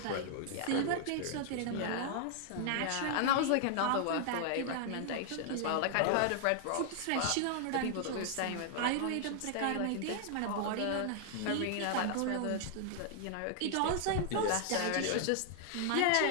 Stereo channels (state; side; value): different; both; correlation 0.00